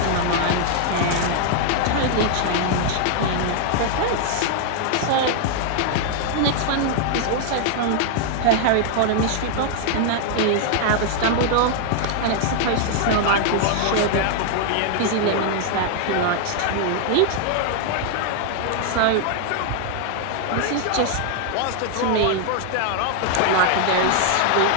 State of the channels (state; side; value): different; both; correlation 0.00